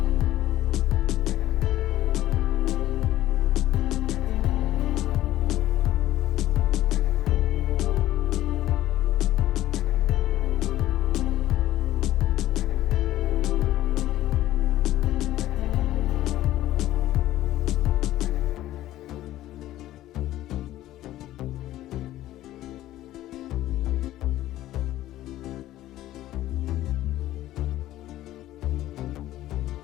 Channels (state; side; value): quieter; right; 14.4 dB